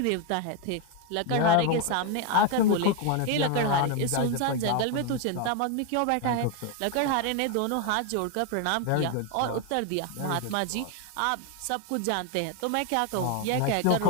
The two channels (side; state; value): both; different; correlation 0.01